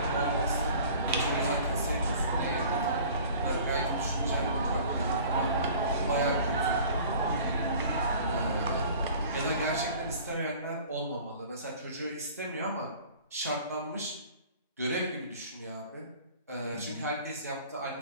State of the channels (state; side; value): inverted; both; correlation -0.46